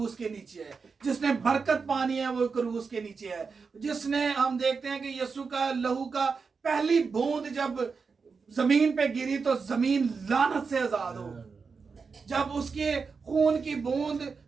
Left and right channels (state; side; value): quieter; left; 5.1 dB